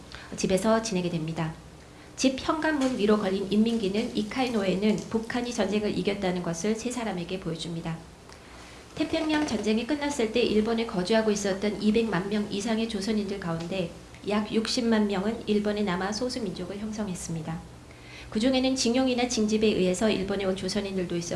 집에서 지내게 됩니다. 집 현관문 위로 걸린 인민기는 이카이노에는 북한이 전쟁을 이겼다는 것을 세 사람에게 보여줍니다. 태평양 전쟁이 끝났을 때 일본에 거주하고 있었던 200만 명 이상의 조선인들 가운데 약 60만 명은 일본에 남아 소수민족을 형성했습니다. 그 중에는 징용이나 징집에 의해서 일본에 온 조선인들도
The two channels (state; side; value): identical; both; correlation 1.00